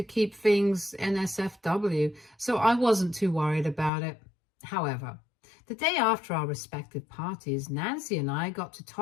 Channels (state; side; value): drops out; right; at 3.9 s